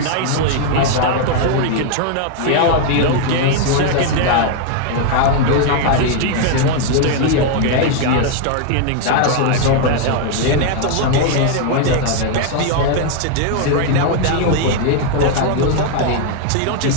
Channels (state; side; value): different; both; correlation 0.00